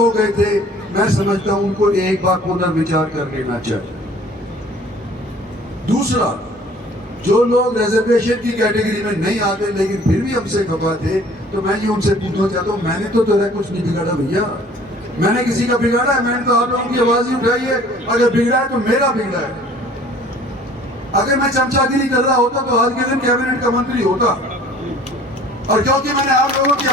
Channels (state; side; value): normal; both; correlation 0.52